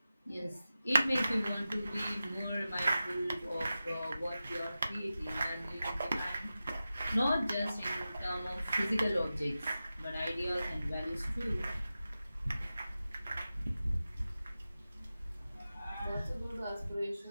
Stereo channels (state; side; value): inverted; both; correlation -0.94